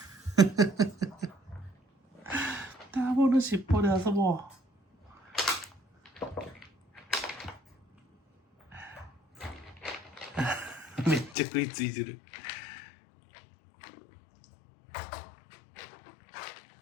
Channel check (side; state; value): right; drops out; at 11.4 s